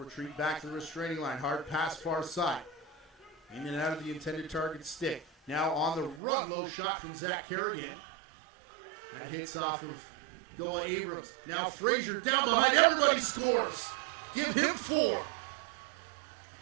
back to the restraining line. Hard pass far side. In and out of the intended target stick. Now on the run, low shot from Zach Kerrigan. That hits off of Goa Abrams. Now Frazier down behind. Everybody scores. Give him 4.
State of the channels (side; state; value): left; drops out; at 6.2 s